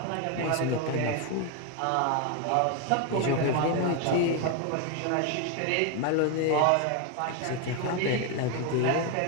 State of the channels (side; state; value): both; different; correlation 0.01